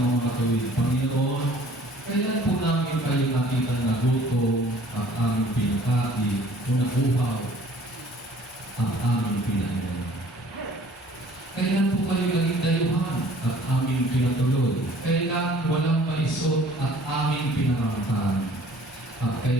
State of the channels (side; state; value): both; normal; correlation 0.52